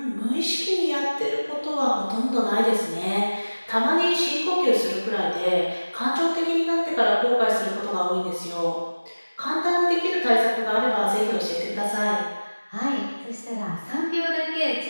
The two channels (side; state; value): both; inverted; correlation -1.00